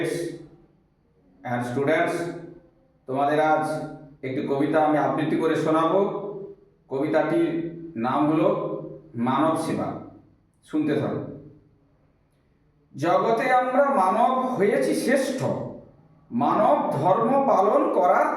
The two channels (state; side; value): identical; both; correlation 1.00